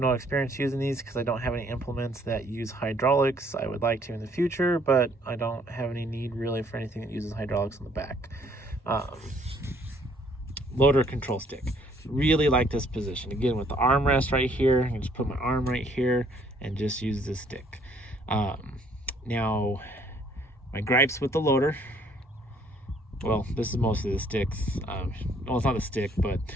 experience using these because I don't have any implements that use hydraulics. I would like to in the future, but I don't have any need really for anything that uses hydraulics on the back. Loader control stick. Really like this position. Again, with the armrest right here, I can just put my arm right here and just use this stick. Now, my gripes with the loader, well, this is mostly the sticks. Well, it's not a stick, but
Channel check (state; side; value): normal; both; correlation 0.63